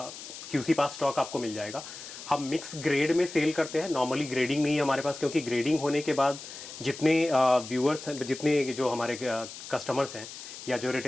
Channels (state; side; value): noise; left; hiss, 12 dB below the sound